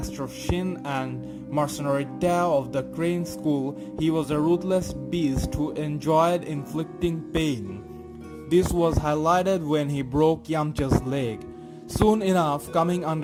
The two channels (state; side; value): identical; both; correlation 1.00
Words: Shin and mercenary Tao of the Crane School, he was a ruthless beast who enjoyed inflicting pain. This was highlighted when he broke Yamcha's leg. Soon enough, coming